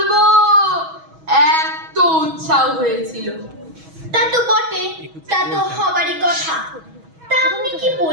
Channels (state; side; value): late; left; 6.2 ms